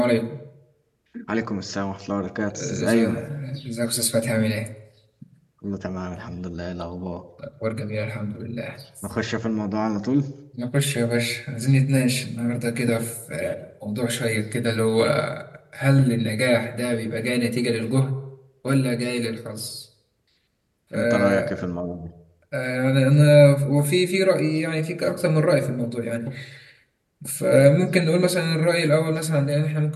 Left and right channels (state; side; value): identical; both; correlation 1.00